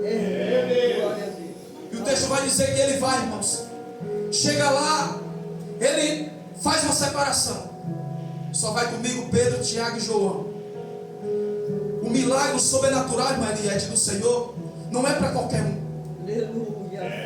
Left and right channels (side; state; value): both; identical; correlation 1.00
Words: E o texto vai dizer que ele vai, irmãos. Chega lá, ele faz uma separação. Só vai comigo Pedro, Tiago e João. O milagre sobrenatural, irmã Eliette, do Senhor não é para qualquer um.